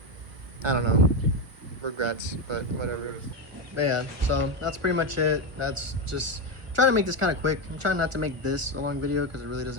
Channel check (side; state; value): left; late; 1.4 ms